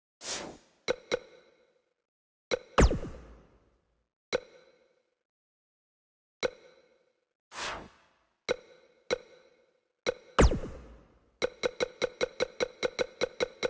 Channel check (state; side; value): identical; both; correlation 1.00